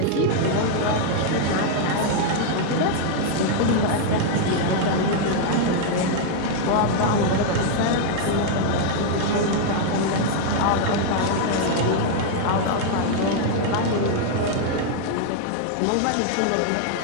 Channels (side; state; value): both; different; correlation 0.00